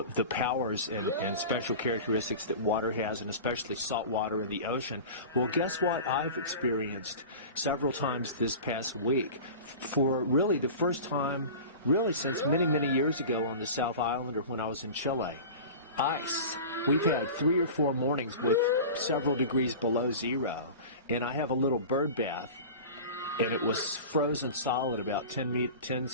powers and special characteristics that water has, and especially salt water in the ocean. Well, guess what I've experienced several times this past week, for really the first time really since many, many years ago on the South Island, or when I was in Chile. Ice. We've had 3 or 4 mornings with several degrees below zero, and I have a little bird bath and it was frozen solid, about 10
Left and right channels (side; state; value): both; inverted; correlation -0.34